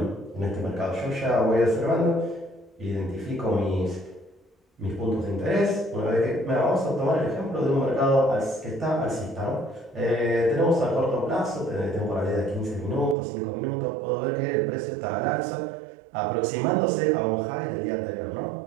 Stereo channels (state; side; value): drops out; left; at 13.2 s